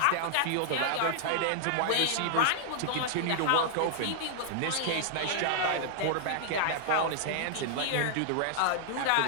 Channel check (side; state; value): both; different; correlation -0.01